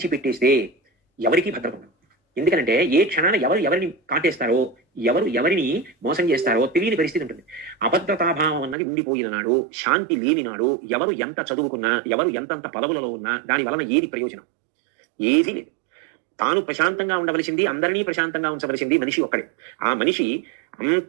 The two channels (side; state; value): left; drops out; at 8.8 s